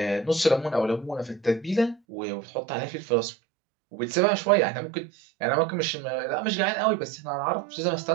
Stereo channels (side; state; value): left; drops out; at 2.0 s